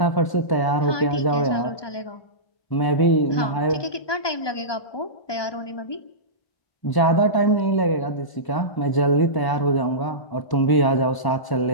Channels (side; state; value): right; late; 1.0 ms